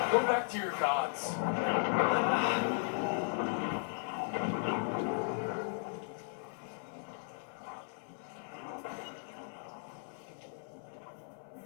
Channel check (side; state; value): right; silent; 54 dB below the other